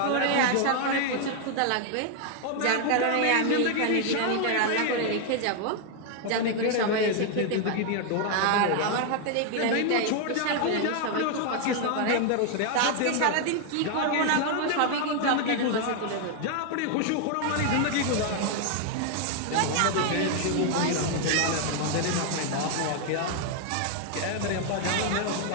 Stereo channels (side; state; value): both; different; correlation 0.00